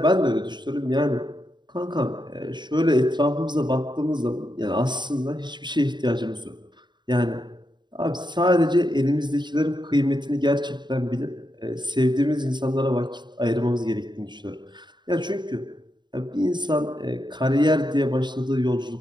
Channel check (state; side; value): late; left; 0.22 ms